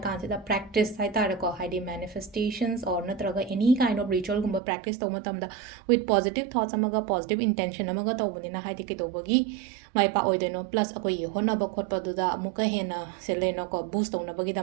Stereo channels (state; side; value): drops out; left; at 4.6 s